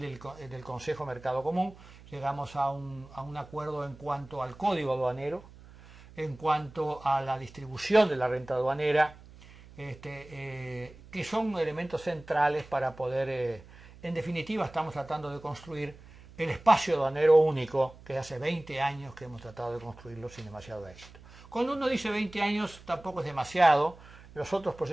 del Consejo Mercado Común, llegamos a un acuerdo en cuanto al código aduanero, en cuanto a la distribución de la renta aduanera, que son elementos centrales para poder, en definitiva estamos tratando de construir el espacio aduanero único, que hace 20 años que hemos tratado de construirlo sin demasiado éxito. Cuando uno dice 20 años tampoco es demasiado, los otros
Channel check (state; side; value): noise; right; hum, 21 dB below the sound